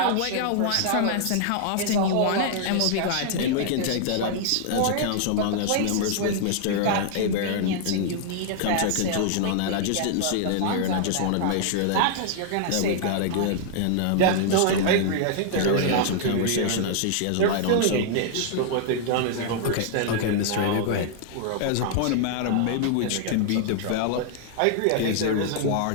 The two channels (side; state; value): both; different; correlation -0.01